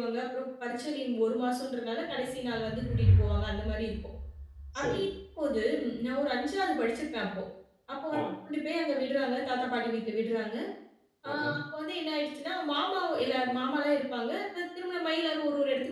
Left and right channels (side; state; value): both; identical; correlation 1.00